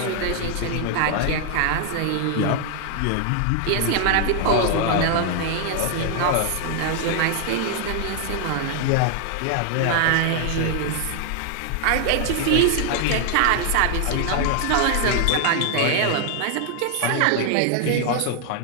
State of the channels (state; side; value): different; both; correlation 0.00